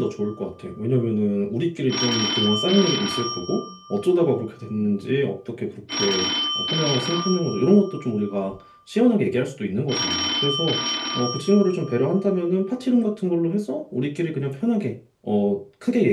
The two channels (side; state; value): both; identical; correlation 1.00